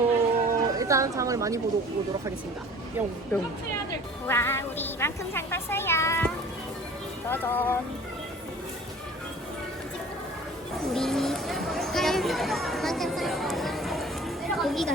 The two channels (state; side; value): normal; both; correlation 0.46